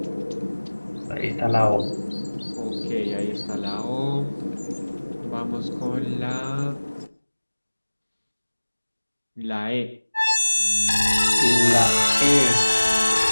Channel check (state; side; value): inverted; both; correlation -1.00